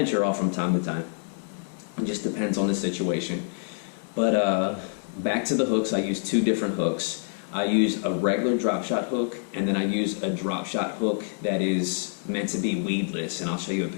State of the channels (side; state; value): right; silent; digital silence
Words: off from time to time. It just depends on the situation. But back to the hooks, I use 2 different hooks. I use a regular drop shot hook, and then I use a drop shot hook that is meant to be weedless, and I'll show you a